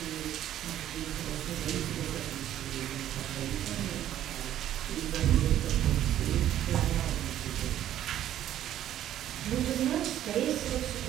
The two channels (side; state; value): left; quieter; 11.9 dB